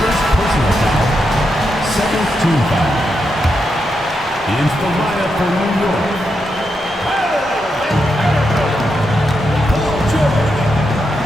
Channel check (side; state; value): both; normal; correlation 0.84